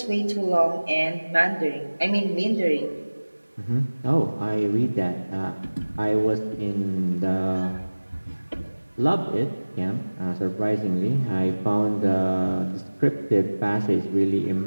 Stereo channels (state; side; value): inverted; both; correlation -1.00